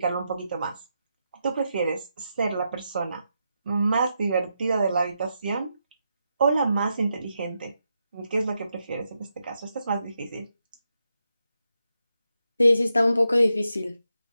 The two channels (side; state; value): both; inverted; correlation -0.85